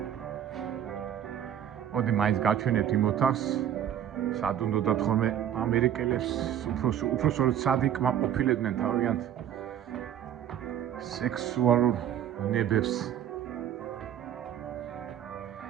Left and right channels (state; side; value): quieter; left; 10.1 dB